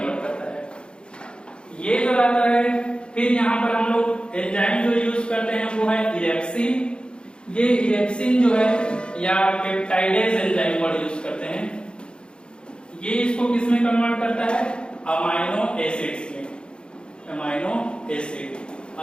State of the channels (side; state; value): right; late; 0.053 ms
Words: करता है। ये जो रहता है, फिर यहाँ पर हम लोग एंजाइम जो यूज करते हैं वो है इरेप्सिन। ये इरेप्सिन जो है या पेप्टाइडेज एंजाइम वर्ड यूज करते हैं, ये इसको किसमें कन्वर्ट करता है? अमाइनो एसिड्स में। अमाइनो एसिड,